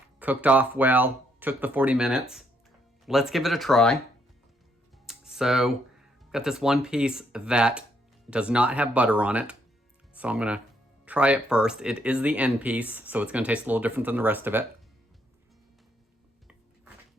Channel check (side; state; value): both; normal; correlation 0.73